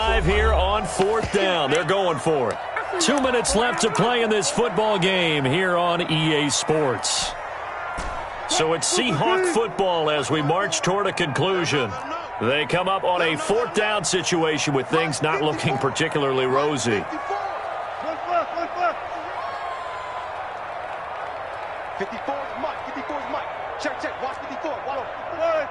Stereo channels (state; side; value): identical; both; correlation 1.00